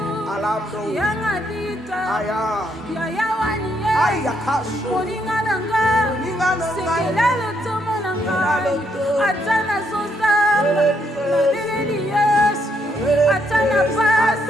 yanga dita yaya wani moninga na nga sekela lotomo na ngai ata nazozamba nabeleli yesu ata na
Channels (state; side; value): normal; both; correlation 0.74